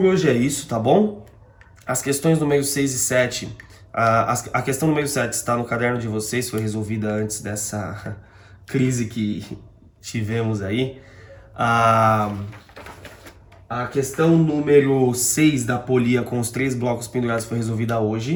hoje é isso, tá bom? As questões número 6 e 7, a questão número 7 está no caderno de vocês, foi resolvida antes dessa crise que tivemos aí. A questão número 6 da polia com os 3 blocos pendurados foi resolvida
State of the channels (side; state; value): both; identical; correlation 1.00